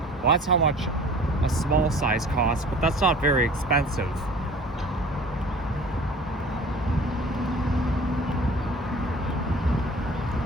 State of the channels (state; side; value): normal; both; correlation 0.45